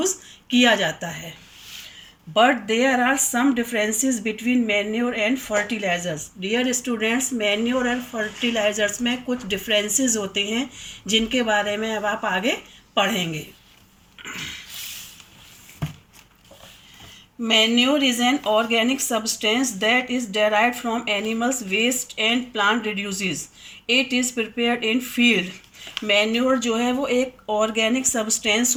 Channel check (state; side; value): identical; both; correlation 1.00